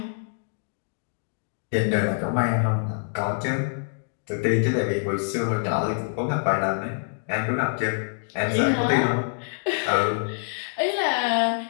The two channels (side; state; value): right; silent; digital silence